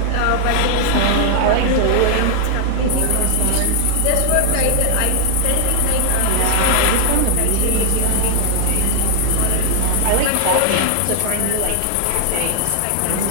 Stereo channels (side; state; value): both; different; correlation 0.00